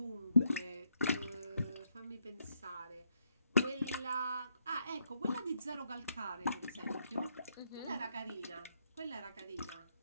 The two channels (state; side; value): inverted; both; correlation -0.77